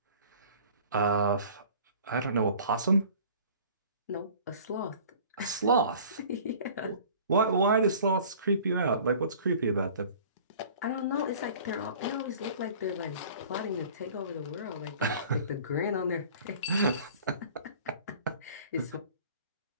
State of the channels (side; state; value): both; inverted; correlation -0.47